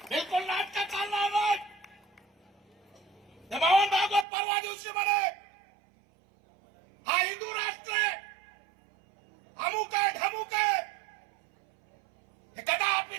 बिलकुल नाटकं चालणार नाही. बावन भागवत परवा दिवशी म्हणे हा हिंदू राष्ट्र आहे, अमुक आहे ढमुक आहे. हे कदापि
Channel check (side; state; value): left; drops out; at 4.2 s